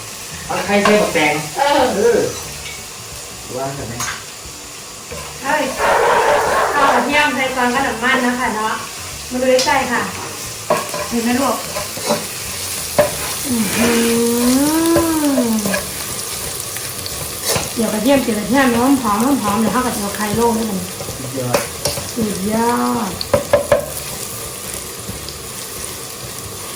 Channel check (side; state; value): both; identical; correlation 1.00